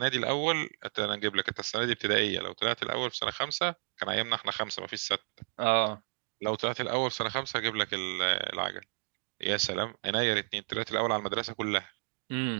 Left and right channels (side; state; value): left; silent; 56 dB below the other